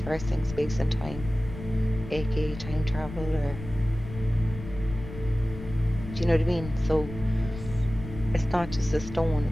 space and time, aka time travel, or do you know what I mean? So it's not just a stone,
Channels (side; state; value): left; noise; rumble, 11 dB below the sound